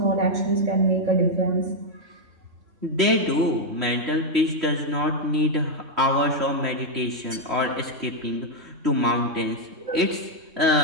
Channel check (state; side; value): late; left; 3.0 ms